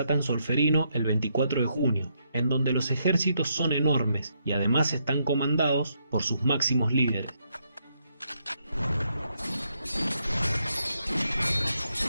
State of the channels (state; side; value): inverted; both; correlation -0.77